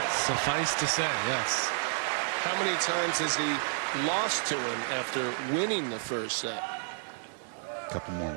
Suffice to say, yes. How many times has he lost to him after winning the first set? A couple more.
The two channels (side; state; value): left; silent; digital silence